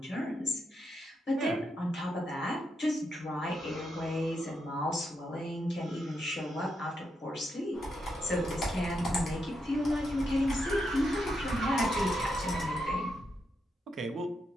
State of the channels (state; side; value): normal; both; correlation 0.82